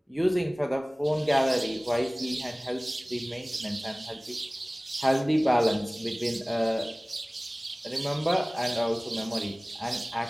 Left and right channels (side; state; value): both; normal; correlation 0.98